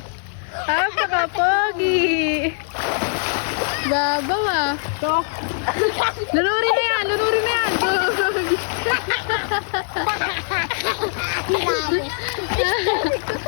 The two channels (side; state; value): right; silent; digital silence